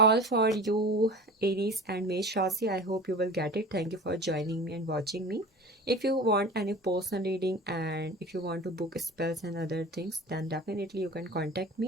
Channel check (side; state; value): both; normal; correlation 0.37